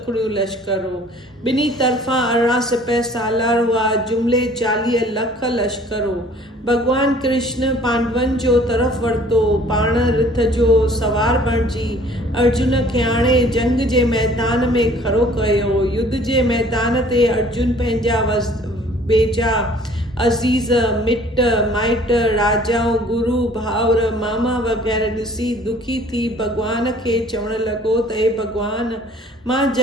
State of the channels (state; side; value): normal; both; correlation 0.53